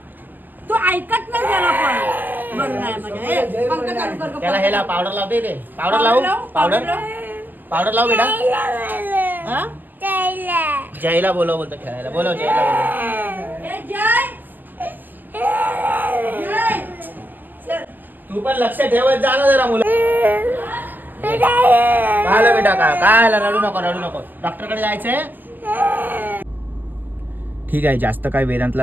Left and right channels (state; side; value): late; left; 0.087 ms